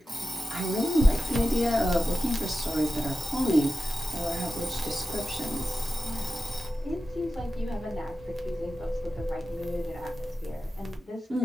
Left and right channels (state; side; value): normal; both; correlation 0.92